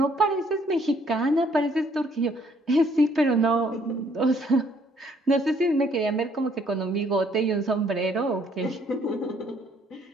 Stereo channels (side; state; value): both; normal; correlation 0.65